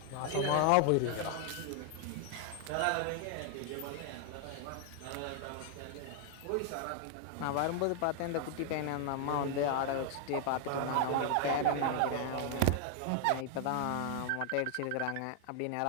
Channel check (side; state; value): both; different; correlation 0.00